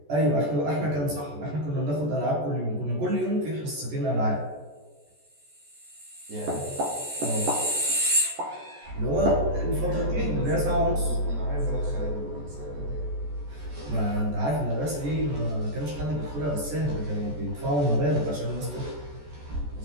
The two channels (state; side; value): late; left; 14 ms